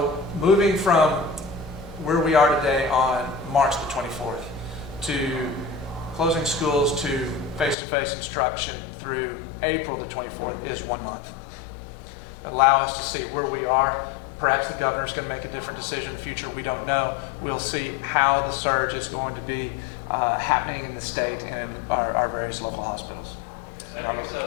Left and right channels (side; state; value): right; drops out; at 7.8 s